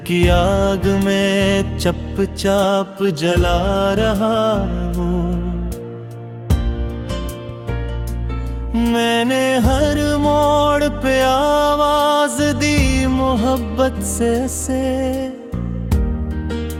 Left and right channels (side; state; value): both; identical; correlation 1.00